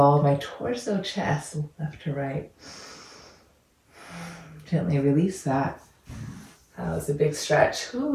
my torso, chest, left to right. Gently release that. That was a big stretch.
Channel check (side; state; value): both; identical; correlation 1.00